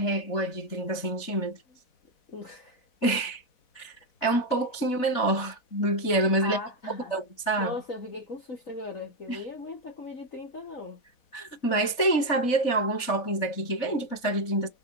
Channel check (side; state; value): right; late; 4.1 ms